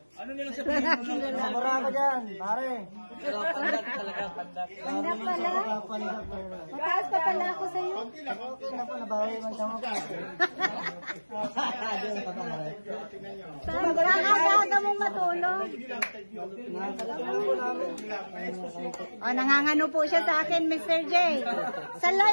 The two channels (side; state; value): both; inverted; correlation -1.00